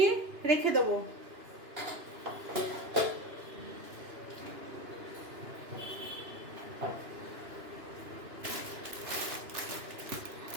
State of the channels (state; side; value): late; left; 2.9 ms